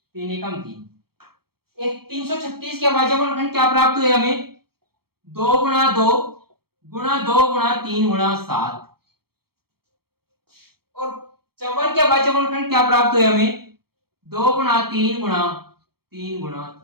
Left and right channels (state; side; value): late; left; 0.95 ms